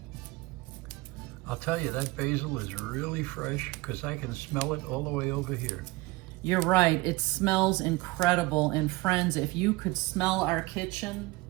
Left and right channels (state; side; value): quieter; left; 22.1 dB